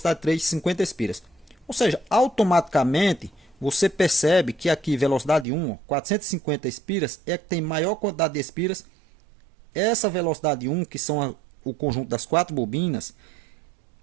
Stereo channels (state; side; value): drops out; left; at 5.5 s